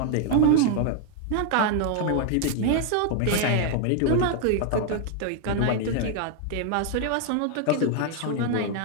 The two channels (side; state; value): both; different; correlation 0.00